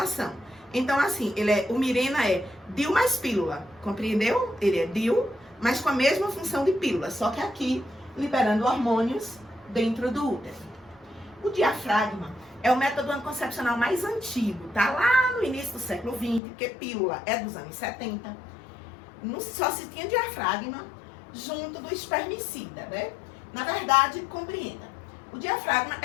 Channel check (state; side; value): drops out; right; at 16.4 s